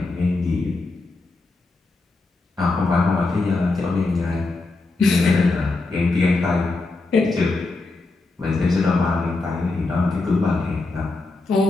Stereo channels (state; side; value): quieter; right; 3.4 dB